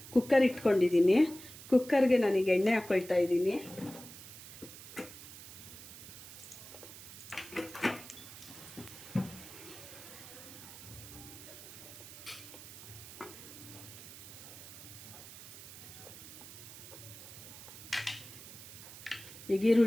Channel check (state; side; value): noise; right; hiss, 14 dB below the sound